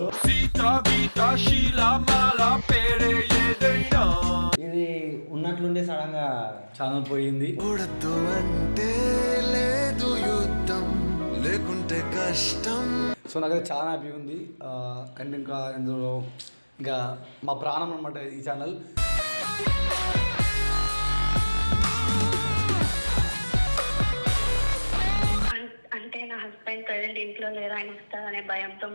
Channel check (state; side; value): inverted; both; correlation -1.00